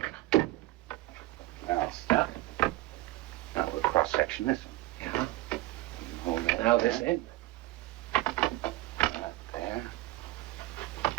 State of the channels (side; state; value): left; quieter; 17.8 dB